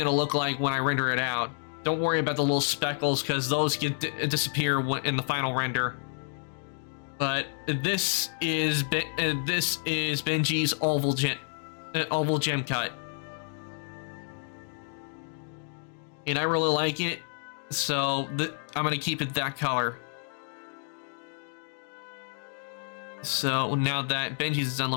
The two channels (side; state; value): right; silent; 56 dB below the other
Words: to look like when I render it out. Don't worry about the little speckles, because those disappear in the final render. But this is Benji's oval gem cut, and I really like it, so I'm gonna keep it that color. So now that Benji's is done,